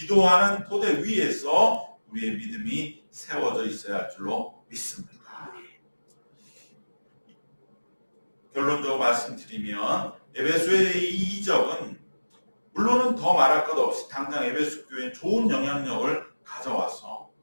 토대 위에서 우리의 믿음이 세워져 있어야 할 줄로 믿습니다. 결론적으로 말씀드리면 에베소의 이 이적은 물론은 더 말할 것 없이 당장 에베소 교회에 좋은 영향력을 가져와서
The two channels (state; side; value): inverted; both; correlation -1.00